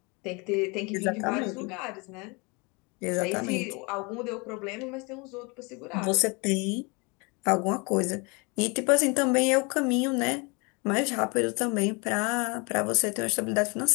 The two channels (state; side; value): quieter; right; 30.0 dB